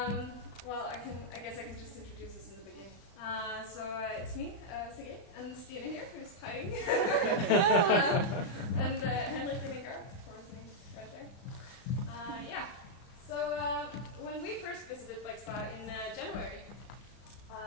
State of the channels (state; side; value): late; right; 35 ms